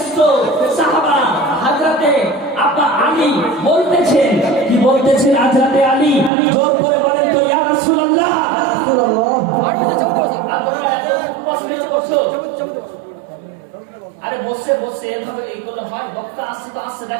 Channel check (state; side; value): drops out; left; at 6.3 s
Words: সাহাবা হযরতে আব্বা আলী বলতেছেন, কি বলতেছেন হযরতে আলী? জোর করে বলেন তো, ইয়া রাসূলুল্লাহ। আরে বসে বসে এভাবে এইগুলো হয়, বক্তা আসছে তো আসছে,